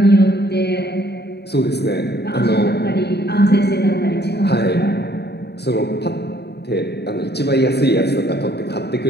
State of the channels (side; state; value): right; late; 0.48 ms